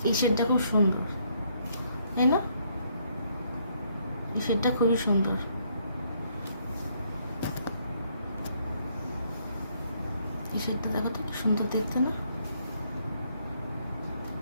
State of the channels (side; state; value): both; inverted; correlation -0.70